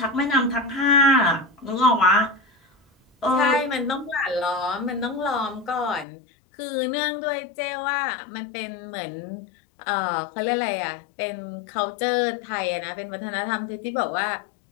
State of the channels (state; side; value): drops out; right; at 6.1 s